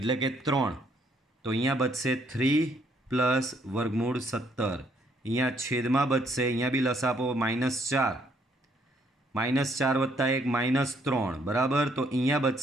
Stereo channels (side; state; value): both; normal; correlation 0.69